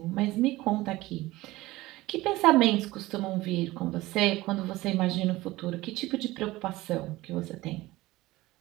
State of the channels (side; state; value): left; quieter; 18.7 dB